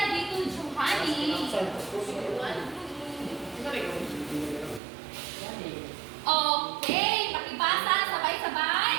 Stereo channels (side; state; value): left; drops out; at 4.8 s